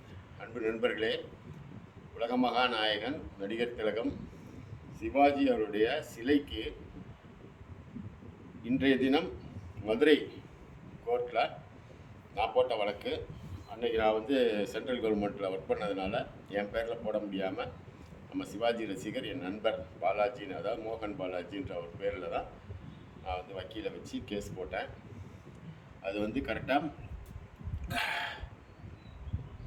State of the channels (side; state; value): both; identical; correlation 1.00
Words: அன்பு நண்பர்களே, உலக மகாநாயகன் நடிகர் திலகம் சிவாஜி அவருடைய சிலைக்கு இன்றைய தினம் மதுரை கோர்ட்டில் நான் போட்ட வழக்கு. அன்றைக்கி நான் சென்ட்ரல் கவர்மெண்ட்டில் ஒர்க் பண்ணதுனால என் பேரில் போட முடியாமல் நம்ம சிவாஜி ரசிகர் என் நண்பர் பாலாஜின்னு, அதாவது மோகன் பாலாஜின்ற ஒரு பேரில் தான் நான் வக்கீலை வச்சு கேஸ் போட்டேன். அது கரெக்டாக